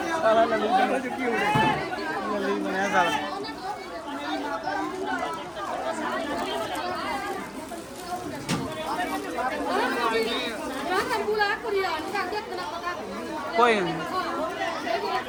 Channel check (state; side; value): identical; both; correlation 1.00